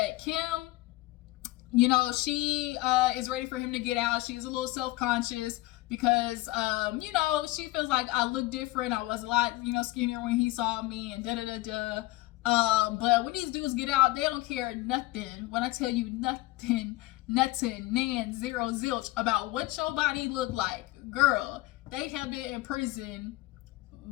Kim, you know, she is ready for him to get out. She's a little self-conscious because, you know, she feels like I look different. I was a lot, you know, skinnier when he saw me and da-da-da-da. But when these dudes get out, they don't care nothing. When I tell you nothing, nan, zero, zilch about what your body look like. Girl, they have been in prison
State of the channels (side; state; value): right; quieter; 19.3 dB